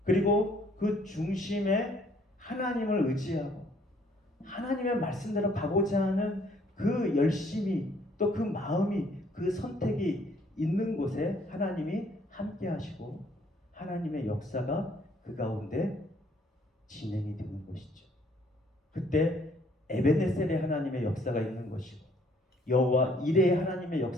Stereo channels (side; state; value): both; normal; correlation 0.63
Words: 그리고 그 중심에 하나님을 의지하고 하나님의 말씀대로 가고자 하는 그 열심이 또 그 마음이 그 선택이 있는 곳에 하나님이 함께 하시고 하나님의 역사가 그 가운데 진행이 되는 것이죠. 그때 에베네셀의 하나님의 역사가 있는 것이고 여호와 이레의 하나님의